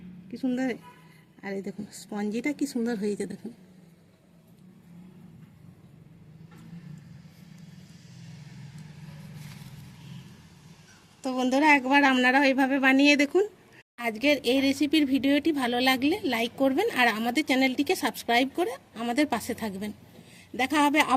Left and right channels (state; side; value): identical; both; correlation 1.00